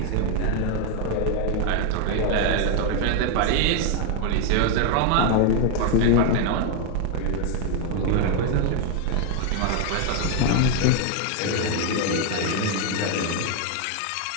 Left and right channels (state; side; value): different; both; correlation 0.01